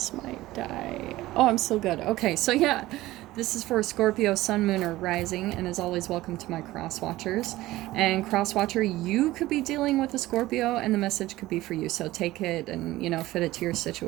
might die. Oh, I'm still good. Okay, so yeah, this is for Scorpio, Sun, Moon, or Rising, and as always, welcome to my cross watchers. And cross watcher, you could be dealing with a Scorpio, and the message could be for you. So, take it and, fit it to your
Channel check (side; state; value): left; quieter; 17.1 dB